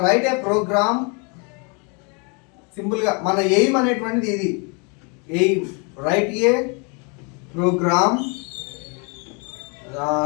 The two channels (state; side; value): quieter; right; 33.9 dB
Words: రైట్ ఏ ప్రోగ్రామ్, సింపుల్గా మన ఎయిమ్ అనేటువంటిది ఇది. Aim write a program.